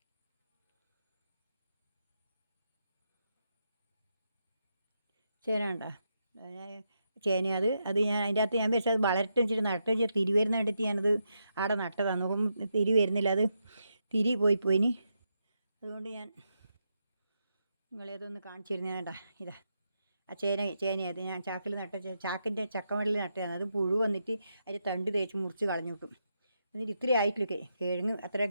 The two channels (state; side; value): inverted; both; correlation -0.83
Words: ചേന കണ്ടാ, ചേന. അത് ഞാൻ അതിൻ്റെ അകത്ത് ഞാൻ വെച്ചാൽ അത് വളരട്ടെ വെച്ചിട്ട് നട്ട് വെച്ചാൽ തിരി വരുന്ന കണ്ടിട്ട് ഞാനത് അവിടെ നട്ടതാണ്. നോക്കുമ്പോൾ തിരി വരുന്നില്ല. അത് തിരി പോയിനി. അതുകൊണ്ട് ഞാൻ നിങ്ങളേതൊന്ന് കാണിച്ചു തരുന്നത്. വേണ്ട ഇതാ ആ ചേനയത് ഞാൻ ചാക്കിൽ ചാക്കിൻ്റെ ചക്കമടലിൽ നട്ടതാണ്. അത് പുഴു വന്നിട്ട് അതിൻ്റെ തണ്ട് തേച്ച് മുറിച്ച് കളഞ്ഞു കിട്ടും. എന്നിട്ട് ഇത്രയും ആയിട്ടില്ല കിഴങ്ങ്. അത്ര